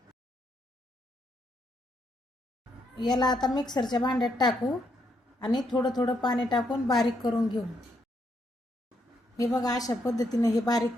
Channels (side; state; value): both; normal; correlation 0.76